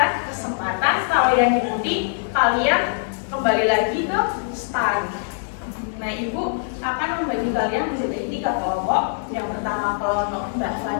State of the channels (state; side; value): silent; right; digital silence